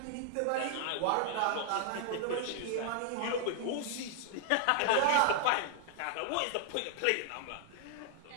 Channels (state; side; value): different; both; correlation 0.00